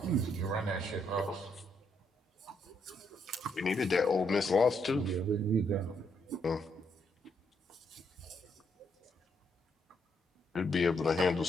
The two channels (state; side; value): normal; both; correlation 0.75